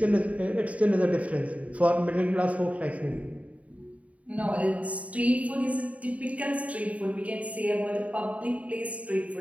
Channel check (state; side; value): late; left; 0.067 ms